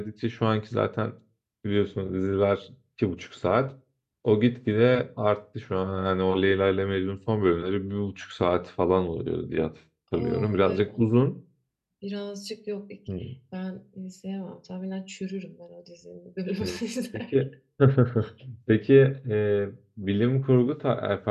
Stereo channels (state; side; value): identical; both; correlation 1.00